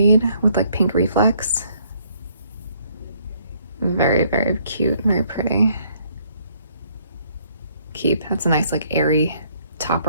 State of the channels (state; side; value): inverted; both; correlation -0.65